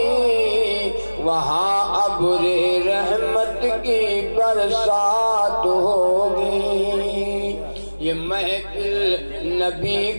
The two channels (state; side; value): inverted; both; correlation -1.00